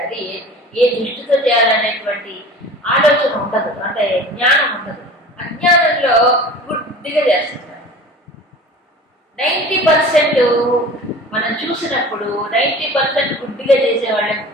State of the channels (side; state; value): both; normal; correlation 0.39